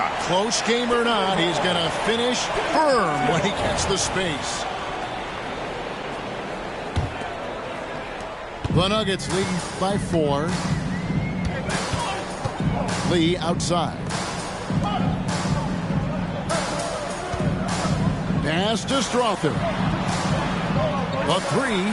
Close game or not, he's going to finish firm when he gets the space. The Nuggets lead by 4. Lee outside. Pass to Strother. A 3.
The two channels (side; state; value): both; identical; correlation 1.00